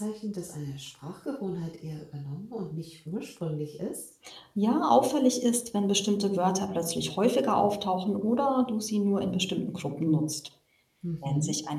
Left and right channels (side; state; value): both; identical; correlation 1.00